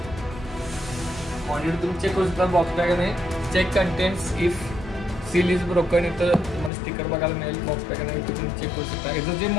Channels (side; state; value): right; drops out; at 6.7 s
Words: मॉनिटर तुम्ही चेक करू शकता. बॉक्स पॅक आहे, check contents if seal is broken. इथं तुम्हाला स्टिकर बघायला मिळेल. बॉक्स पॅक आहे, इथे तुम्ही चेक करू शकता. याचं जे